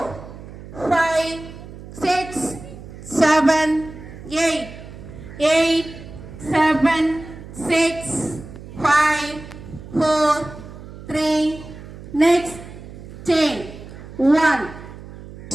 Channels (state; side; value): noise; right; hum, 15 dB below the sound